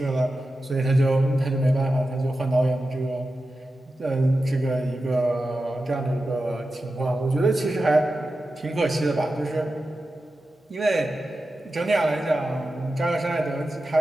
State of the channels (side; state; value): both; normal; correlation 0.92